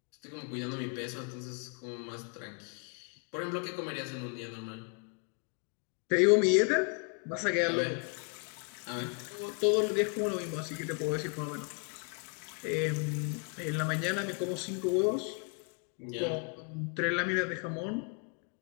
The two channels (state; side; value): quieter; right; 36.9 dB